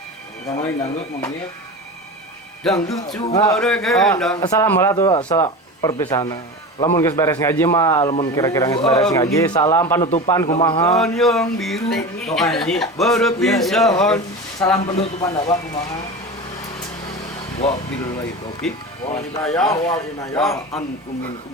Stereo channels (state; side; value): normal; both; correlation 0.28